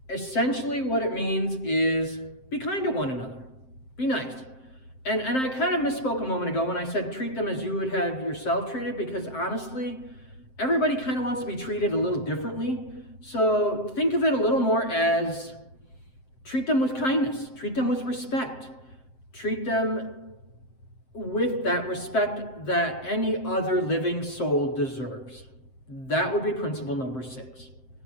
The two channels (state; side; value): late; right; 7.7 ms